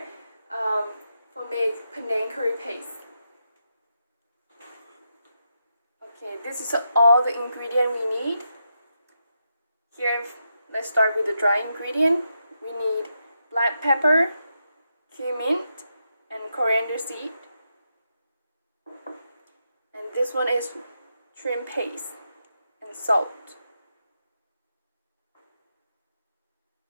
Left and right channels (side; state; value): both; inverted; correlation -0.84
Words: for make Panang Curry Paste. Okay, this is all the ingredient we need. Here, let's start with the dry ingredient. We need black pepper, cumin, and coriander seed. And this one is shrimp paste and salt.